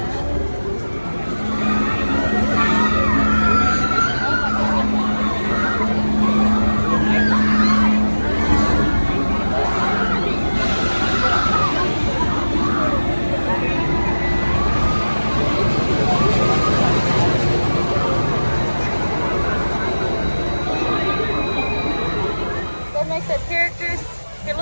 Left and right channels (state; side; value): inverted; both; correlation -1.00